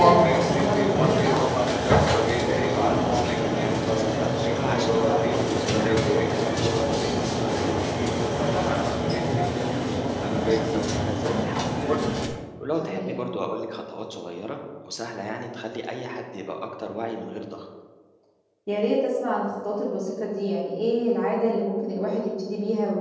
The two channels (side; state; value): both; identical; correlation 1.00